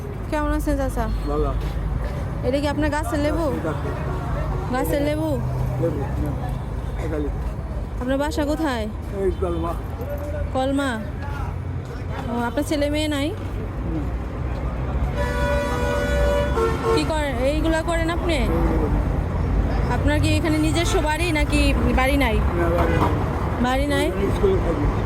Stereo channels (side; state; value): both; identical; correlation 1.00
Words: কেমন আছেন চাচা? ভালো। এটা কি আপনার গাছের লেবু? গাছের লেবু। আপনার বাসা কোথায়? এই কলমা। কলমা। ও, আপনার ছেলে মেয়ে নাই? কি করেন এইগুলা করেন আপনি? আপনার কি এখানে নিজস্ব বাড়ি নাকি বাড়ি নাই? বাড়ি নাই,